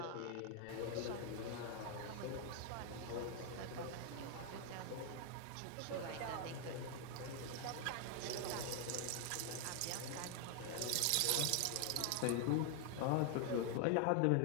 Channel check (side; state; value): both; different; correlation 0.00